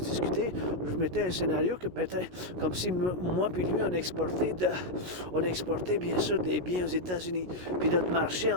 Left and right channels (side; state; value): left; late; 16 ms